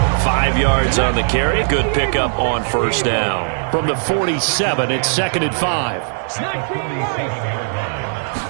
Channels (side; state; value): left; silent; 59 dB below the other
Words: 5 yards on the carry. Good pickup on first down. From the 47, it's 2nd and 5.